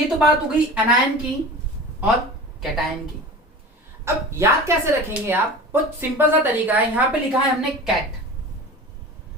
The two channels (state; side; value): normal; both; correlation 0.35